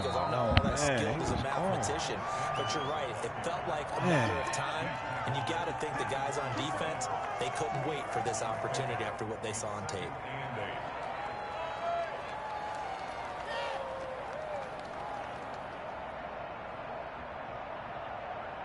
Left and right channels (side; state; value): both; identical; correlation 1.00